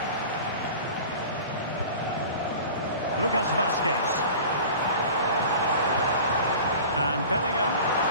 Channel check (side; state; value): both; inverted; correlation -0.39